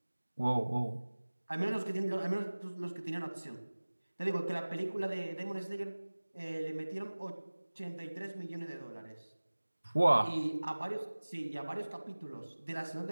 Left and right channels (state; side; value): inverted; both; correlation -1.00